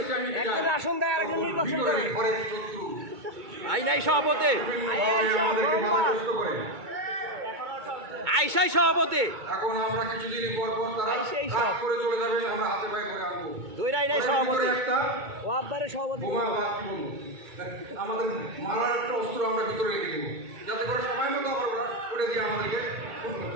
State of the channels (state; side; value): late; left; 2.2 ms